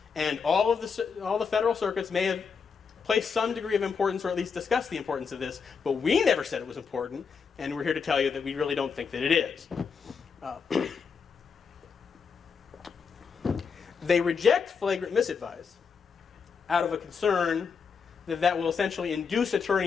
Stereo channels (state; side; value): quieter; right; 5.9 dB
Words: and all the federal circuits may have placed some degree of importance, or at least discussed the importance of this, but we never said it was important, and we're here to tell you that we really don't think that it is. They reject flagrant misadvice out of a concern that will essentially induce